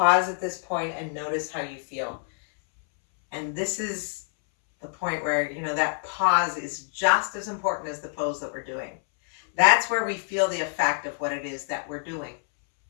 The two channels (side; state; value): right; silent; 61 dB below the other